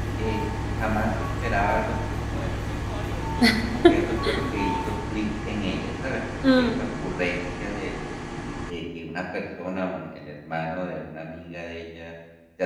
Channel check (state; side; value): identical; both; correlation 1.00